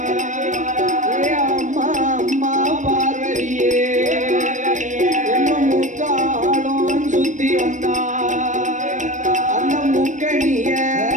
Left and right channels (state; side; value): late; left; 0.36 ms